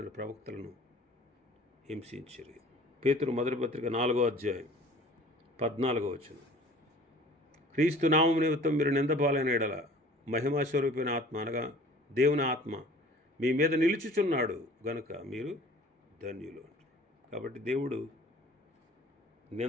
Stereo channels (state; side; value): normal; both; correlation 0.48